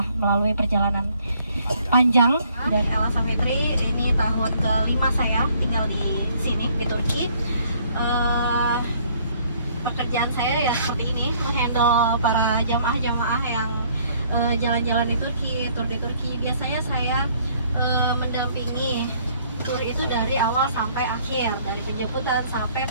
melalui perjalanan panjang dari Ella Safitri, ini tahun kelima saya tinggal di sini di Turki. Pekerjaan saya ya seperti ini, menghandle para jamaah-jamaah yang jalan-jalan di Turki, tur di Turki. Biasanya saya mendampingi tur itu dari awal sampai akhir, dari penjemputan sampai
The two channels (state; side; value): inverted; both; correlation -0.62